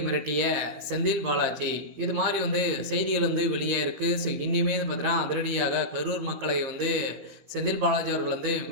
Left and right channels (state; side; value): late; left; 15 ms